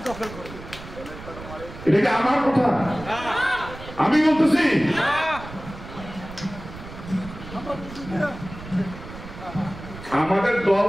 এটা কি আমার কথা? আমি বলতেছি আমাদের দল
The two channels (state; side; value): noise; right; rumble, 14 dB below the sound